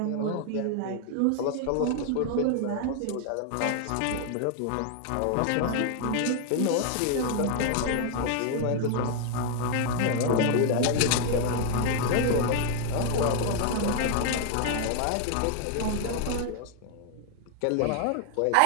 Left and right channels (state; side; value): different; both; correlation 0.00